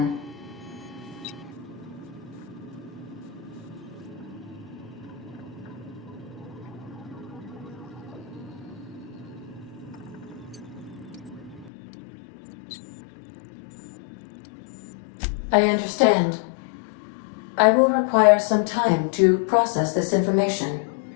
I understand. I will require some time to process this information.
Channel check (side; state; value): right; drops out; at 11.7 s